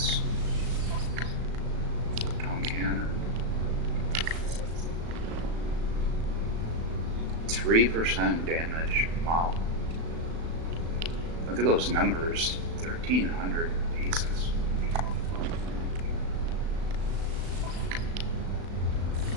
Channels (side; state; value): left; late; 36 ms